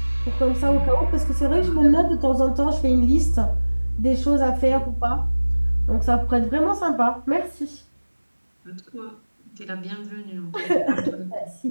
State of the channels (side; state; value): both; inverted; correlation -1.00